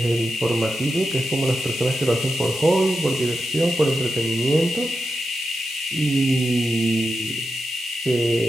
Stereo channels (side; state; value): both; normal; correlation 0.89